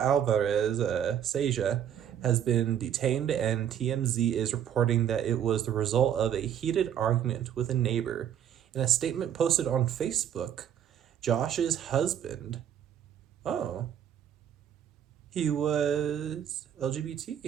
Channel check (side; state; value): left; quieter; 9.6 dB